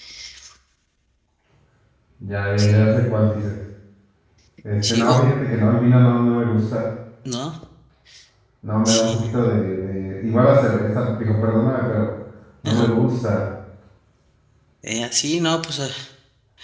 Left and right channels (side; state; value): both; identical; correlation 1.00